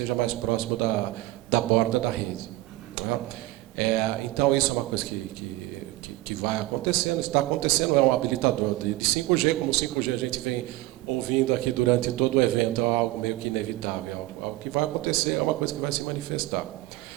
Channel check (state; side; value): quieter; left; 18.0 dB